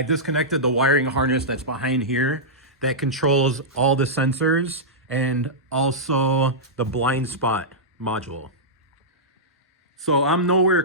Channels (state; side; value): normal; both; correlation -0.13